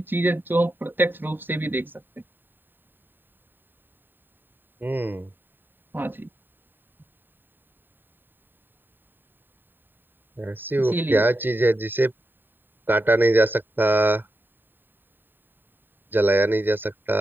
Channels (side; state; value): left; late; 0.094 ms